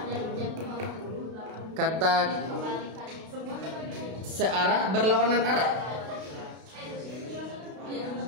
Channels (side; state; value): left; late; 32 ms